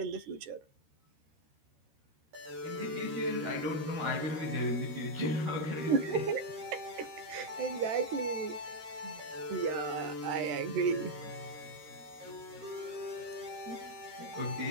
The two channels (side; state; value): left; late; 13 ms